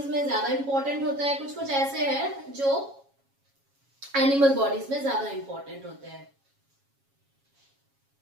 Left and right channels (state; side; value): late; left; 7.3 ms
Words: में ज्यादा इंपॉर्टेंट होता है, कुछ ऐसे हैं जो एनिमल बॉडीज में ज्यादा इंपॉर्टेंट होते हैं.